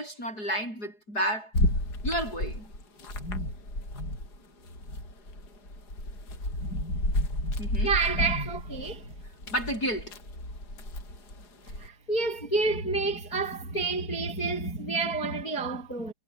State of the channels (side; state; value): right; late; 4.7 ms